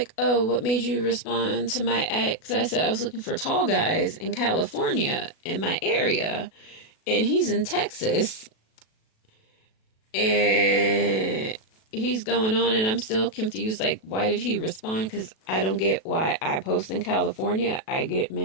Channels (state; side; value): late; right; 37 ms